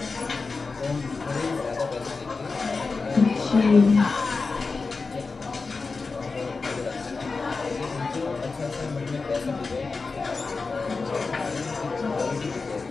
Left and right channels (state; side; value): quieter; right; 4.2 dB